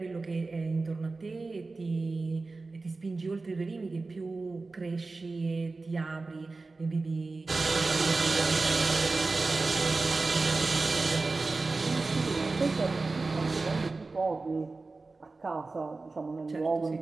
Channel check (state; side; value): quieter; left; 3.7 dB